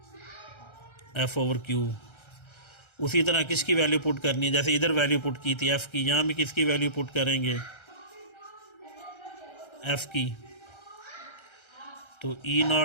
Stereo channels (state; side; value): late; right; 1.3 ms